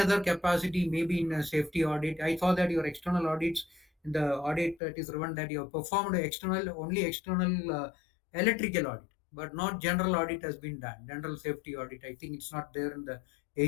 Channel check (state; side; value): drops out; right; at 4.8 s